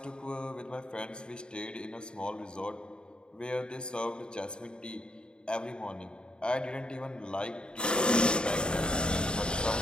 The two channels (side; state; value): right; late; 0.050 ms